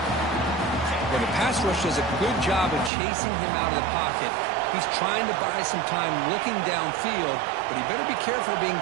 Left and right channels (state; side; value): drops out; left; at 2.9 s